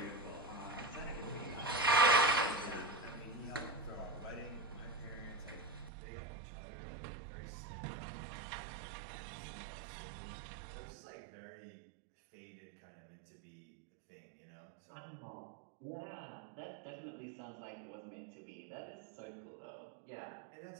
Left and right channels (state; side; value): drops out; left; at 5.9 s